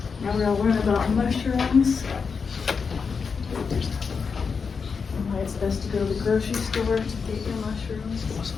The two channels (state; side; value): quieter; right; 5.5 dB